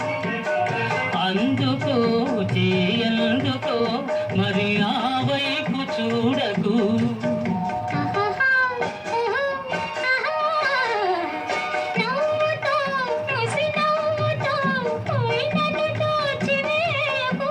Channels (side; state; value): both; identical; correlation 1.00